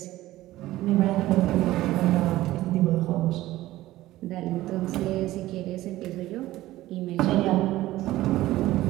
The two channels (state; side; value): quieter; left; 16.1 dB